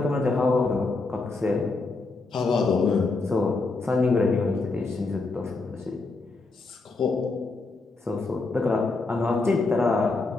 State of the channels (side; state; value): right; quieter; 3.6 dB